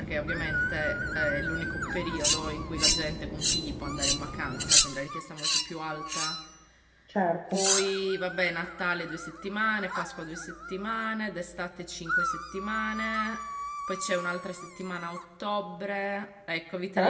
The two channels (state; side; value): identical; both; correlation 1.00